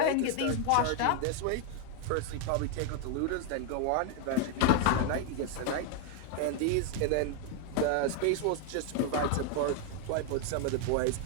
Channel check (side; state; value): both; different; correlation 0.00